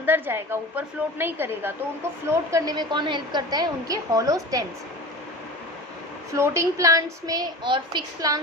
जाएगा, ऊपर फ्लोट नहीं करेगा। तो उनको फ्लोट करने में कौन हेल्प करता है, उनके हॉलो स्टेम्स। फ्लोटिंग प्लांट्स में और फिक्स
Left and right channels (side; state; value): both; normal; correlation 0.34